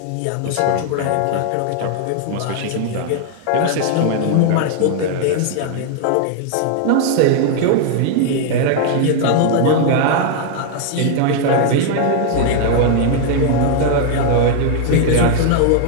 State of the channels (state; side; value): different; both; correlation 0.00